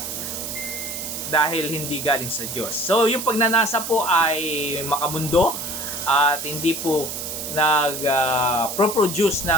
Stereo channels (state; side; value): noise; right; hiss, 6 dB below the sound